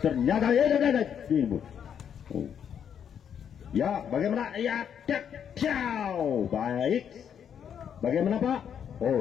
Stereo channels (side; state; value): right; quieter; 8.4 dB